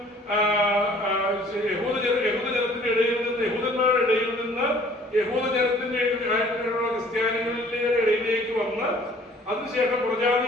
യഹൂദജനത്തിന്റെ ഇടയിൽ നിന്ന്, യഹൂദന്മാരുടെ ഇടയിൽ നിന്ന് യഹൂദജനത്തിന്റെ ക്രിസ്ത്യാനികളുടെ ഇടയിലേക്ക് വന്ന് അതിനുശേഷം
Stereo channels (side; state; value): both; normal; correlation 0.54